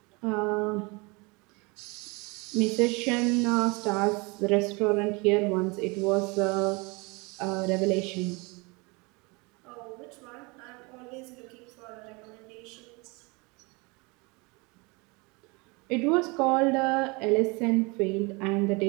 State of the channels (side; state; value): left; quieter; 27.8 dB